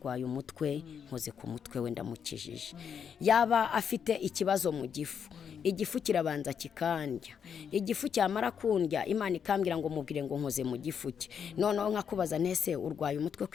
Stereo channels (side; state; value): right; quieter; 7.4 dB